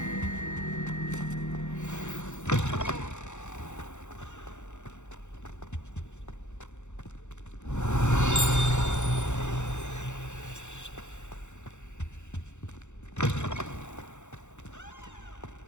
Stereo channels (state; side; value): late; right; 0.84 ms